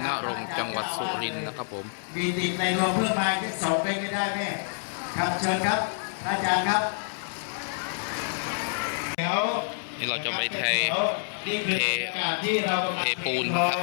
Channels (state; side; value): silent; right; digital silence